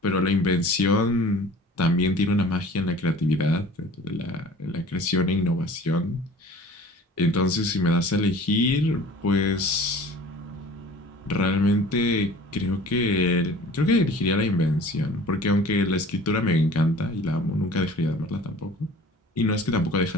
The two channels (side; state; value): both; normal; correlation 0.45